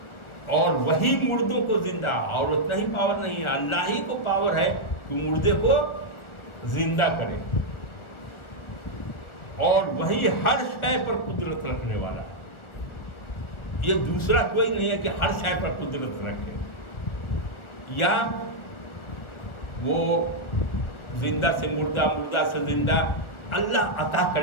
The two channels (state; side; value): late; right; 1.4 ms